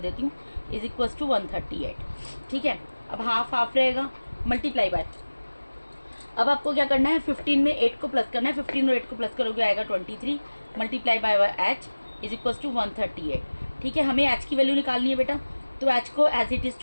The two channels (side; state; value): both; inverted; correlation -1.00